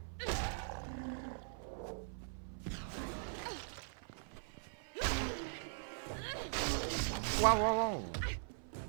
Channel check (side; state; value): left; silent; 50 dB below the other